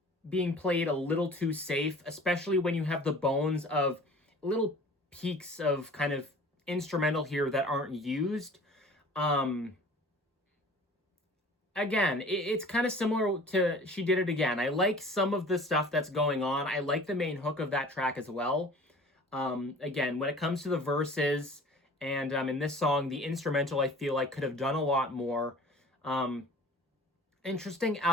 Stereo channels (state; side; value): normal; both; correlation 0.45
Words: being played a little too safe, especially when you have the bones of little peaks of kind of instrumental here that aren't used. Again, it's kind of similar to She Did It Again. I like some of the stuff that's going on. I like the main hook of that track as well. Again, when it comes to the verses and in this song, the instrumental, I feel like could have done a lot more. Interesting